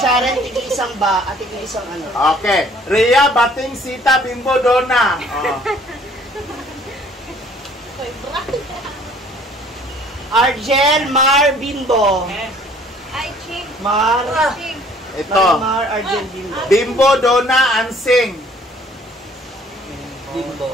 tig-isang ba? At tig-isang ano? Okay. Rhea, Bating, Sita, Bimbo, Donna. Oh. Argel, Mar, Bimbo. Ay, Ching. Mar. Ching. Ito. Mar, Argel, Bimbo. Bimbo, Donna, Ansing.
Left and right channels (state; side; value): normal; both; correlation 0.57